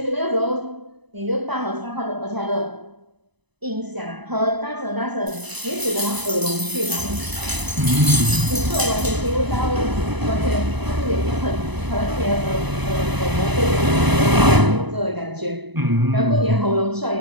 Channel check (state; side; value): late; left; 1.0 ms